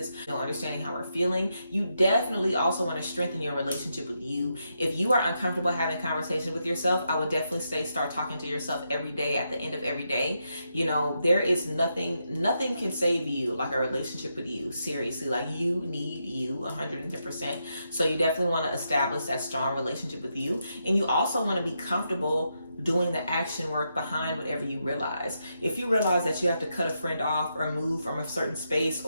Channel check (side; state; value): both; inverted; correlation -0.83